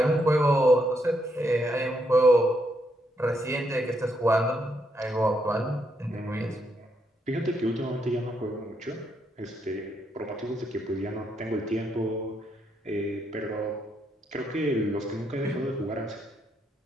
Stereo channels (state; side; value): normal; both; correlation 0.77